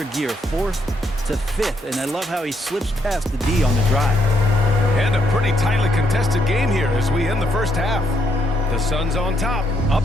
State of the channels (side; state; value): both; normal; correlation 0.74